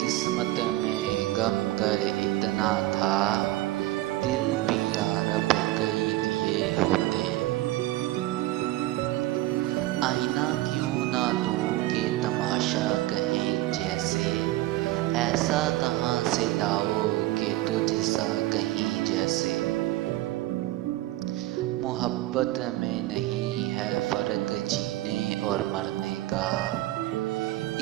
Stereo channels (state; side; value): quieter; left; 16.9 dB